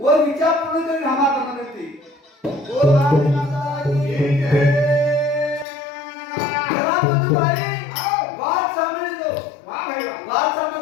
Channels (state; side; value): drops out; right; at 5.7 s